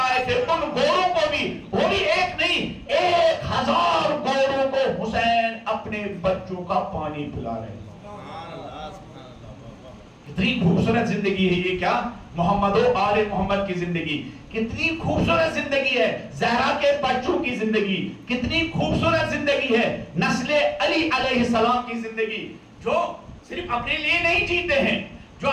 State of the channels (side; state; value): both; identical; correlation 1.00